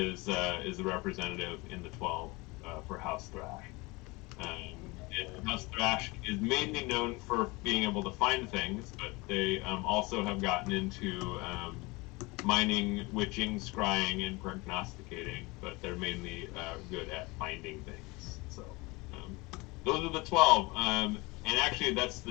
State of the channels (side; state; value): right; quieter; 24.5 dB